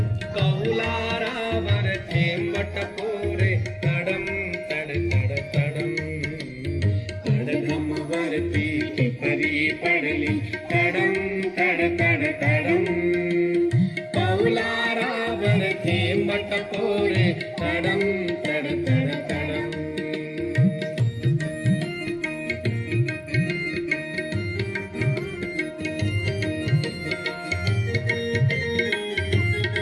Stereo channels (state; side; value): identical; both; correlation 1.00